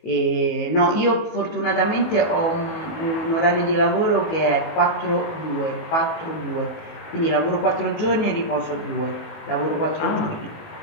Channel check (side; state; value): right; late; 19 ms